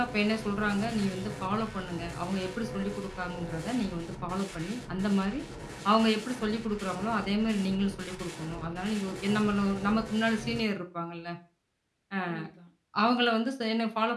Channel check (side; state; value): both; identical; correlation 1.00